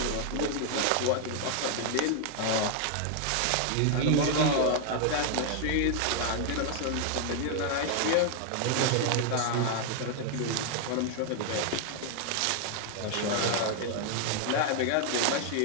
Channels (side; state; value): both; different; correlation 0.00